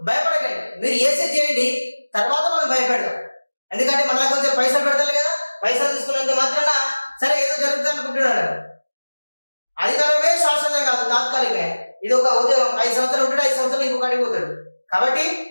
భయపడకండి. మీరు ఏసీ చేయండి, తర్వాత మనం భయపెడదాం. ఎందుకంటే మన కొంచెం పైసలు పెడతారు కదా, పైసలు తీసుకున్నంత మాత్రాన సరే ఏదో జరుగుతుంది అనుకుంటున్నాడు. అధికారమే శాశ్వతం కాదు, తాత్కాలికమే. ఇది ఒక ఉద్యోగం, 5 సంవత్సరాలు ఉంటాడు, 5 సంవత్సరాలు ఇంకొక అడిగిపోతాడు. కాబట్టి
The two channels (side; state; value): both; inverted; correlation -1.00